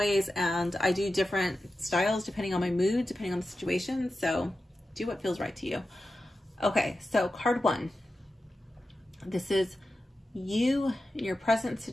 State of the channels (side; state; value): both; normal; correlation 0.92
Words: and I do different styles depending on my mood, depending on the situation. So do what feels right to you. Okay, so card 1. This is you in your present